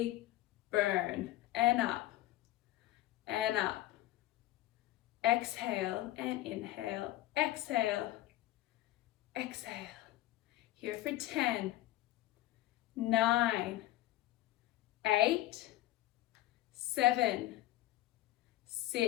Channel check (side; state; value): right; quieter; 15.7 dB